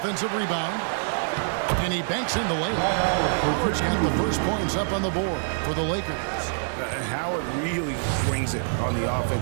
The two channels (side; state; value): left; silent; digital silence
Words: rebound. And he banks in the layup. Howard's got the first points up on the board for the Lakers. Howard really brings it on the